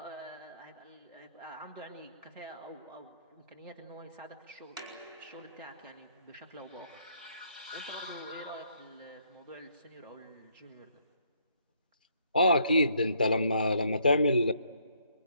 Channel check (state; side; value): inverted; both; correlation -0.70